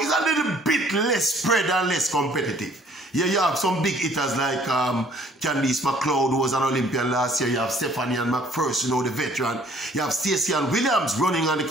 a little bit less spread and less competitive. Yeah, you have some big hitters like Candice McLeod, who was an Olympian last year. You have Stephanie and McPherson, you know, the veteran. You have Stacey and Williams running on the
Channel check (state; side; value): normal; both; correlation 0.58